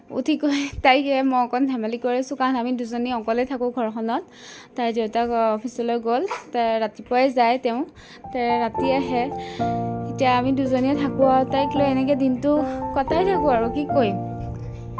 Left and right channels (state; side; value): identical; both; correlation 1.00